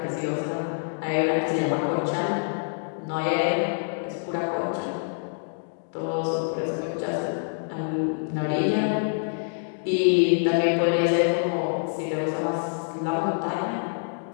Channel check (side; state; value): right; silent; digital silence